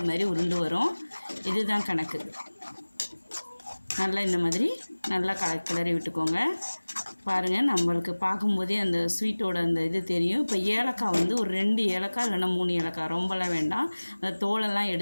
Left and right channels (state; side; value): inverted; both; correlation -1.00